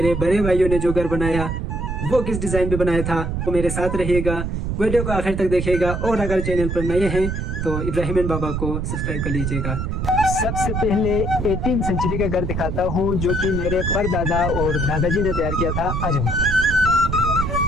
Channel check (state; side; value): noise; right; rumble, 2 dB below the sound